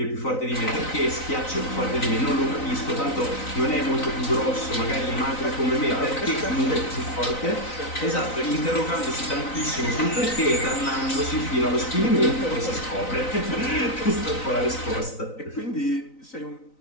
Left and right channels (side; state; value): right; late; 3.9 ms